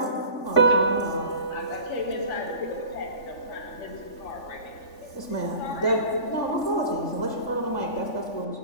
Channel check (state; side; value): late; right; 3.5 ms